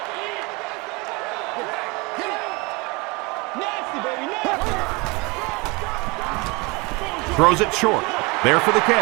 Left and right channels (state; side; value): quieter; left; 26.8 dB